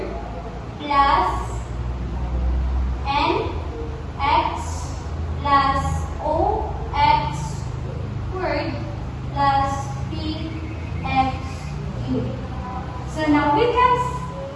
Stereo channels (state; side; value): identical; both; correlation 1.00